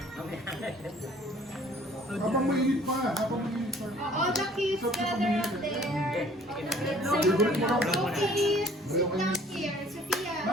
Habang mainit pa, habang mainit pa. All the kids gather up there. Sophie, sit down here. Sophia.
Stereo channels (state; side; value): normal; both; correlation 0.55